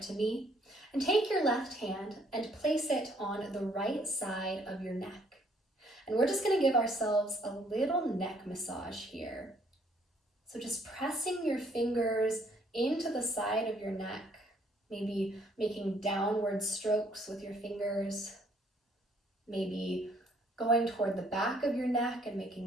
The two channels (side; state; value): both; normal; correlation 0.65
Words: me, and take your left hand and place it on the right side of your neck. And we're just going to give ourselves a little neck massage here. So just pressing your fingers into the side of your neck, maybe making downward strokes with your fingers, maybe going toward the back of your neck and